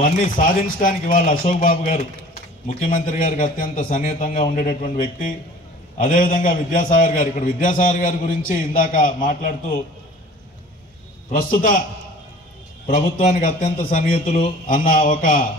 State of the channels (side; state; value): both; normal; correlation 0.46